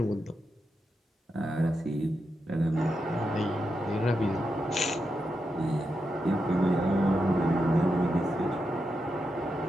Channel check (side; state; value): both; normal; correlation 0.86